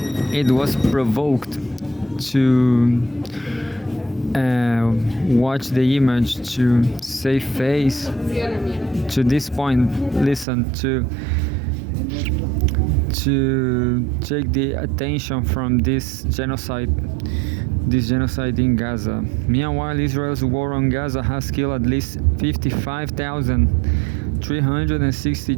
it was provoked to watch the image, to save face. To this point, listen, to take the attention from this genocide in Gaza. Meanwhile, Israel's war on Gaza has killed at least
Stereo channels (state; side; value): drops out; left; at 10.5 s